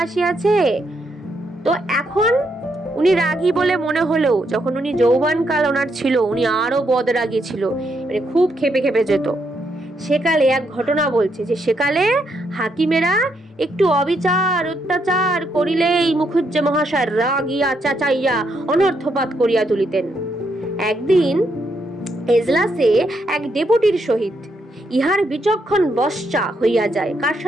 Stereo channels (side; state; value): both; normal; correlation 0.77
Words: আসিয়াছে, তো এখন উনি রাগী বলে মনে হলেও যখন উনি যৌবনকাল ওনার ছিল উনি আরো বদরাগী ছিল, মানে খুব খেপে খেপে যেত। সেকালে এক ঘটনা বলছে যে সেকালে হাকিমেরা একটু অবিচার অত্যাচার করিলেই মুখুজ্জে মহাশয় রাগিয়া চাচাইয়া অনর্থপাত করিয়া তুলিতেন। একদিন এজলাসে এক ডেপুটির সহিত ইহার বিচক্ষণ বশ্চা হইয়া যায়। কার